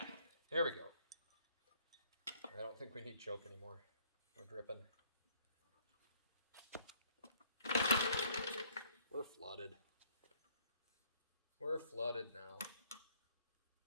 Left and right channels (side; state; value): both; inverted; correlation -0.63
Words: there we go. I don't think we need choke anymore. We're dripping. We're flooded. We're flooded now.